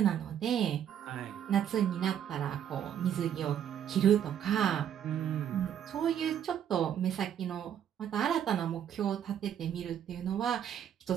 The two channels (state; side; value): quieter; left; 9.5 dB